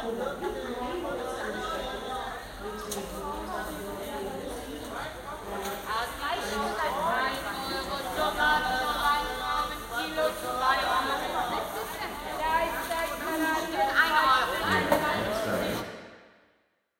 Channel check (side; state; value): both; identical; correlation 1.00